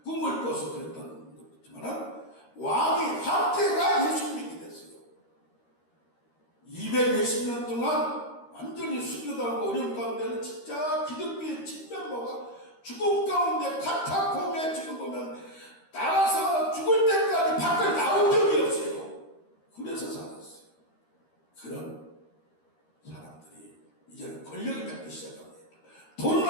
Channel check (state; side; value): late; right; 13 ms